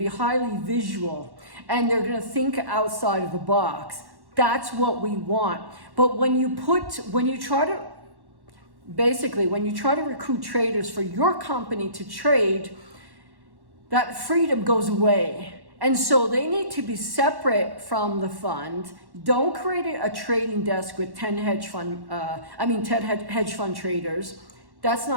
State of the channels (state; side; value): late; left; 1.1 ms